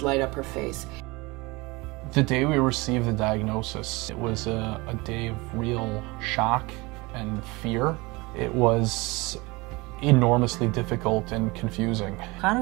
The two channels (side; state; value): left; quieter; 24.1 dB